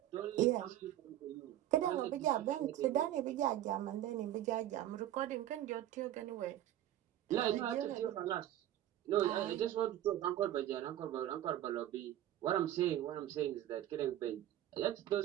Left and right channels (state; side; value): quieter; left; 12.7 dB